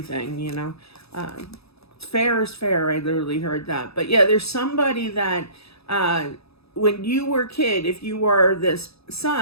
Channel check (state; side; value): late; right; 0.78 ms